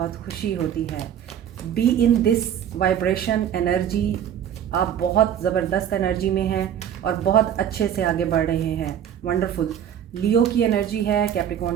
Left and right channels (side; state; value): left; quieter; 9.5 dB